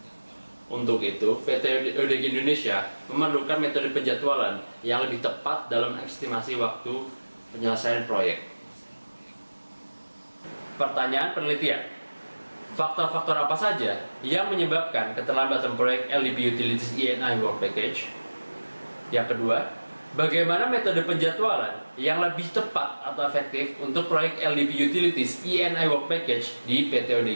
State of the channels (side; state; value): both; inverted; correlation -1.00